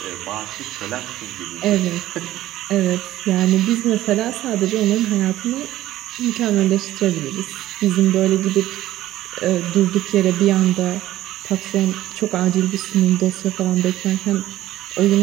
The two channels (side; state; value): left; quieter; 14.7 dB